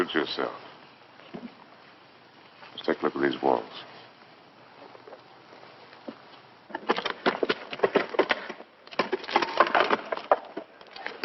yourself. Let's take a look at these walls.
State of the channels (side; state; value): both; identical; correlation 1.00